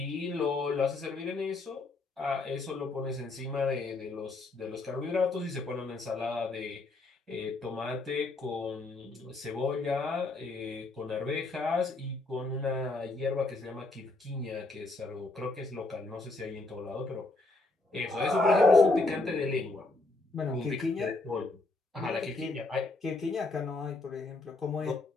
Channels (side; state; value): right; quieter; 3.3 dB